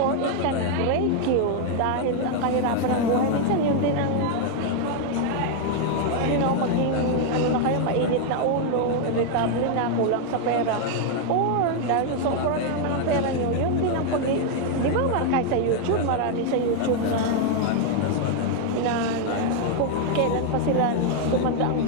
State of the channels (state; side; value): different; both; correlation 0.00